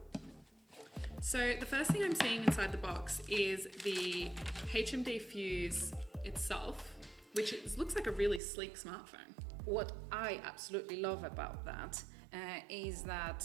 So the first thing I'm seeing inside the box is the HMD Fuse itself, which looks like a really sleek smartphone. What I absolutely love about that is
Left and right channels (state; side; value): drops out; left; at 8.4 s